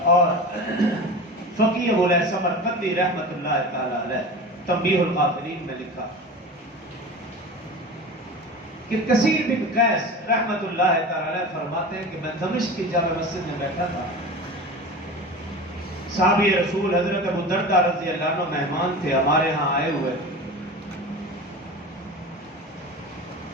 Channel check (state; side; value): normal; both; correlation 0.32